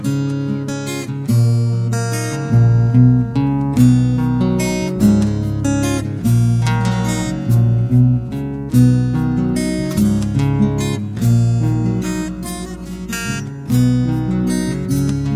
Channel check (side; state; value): both; identical; correlation 1.00